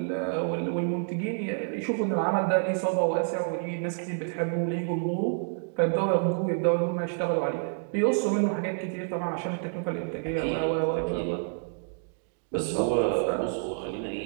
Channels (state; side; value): silent; left; digital silence